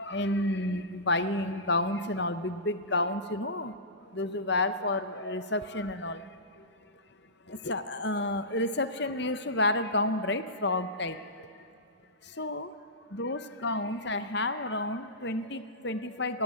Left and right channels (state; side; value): normal; both; correlation -0.19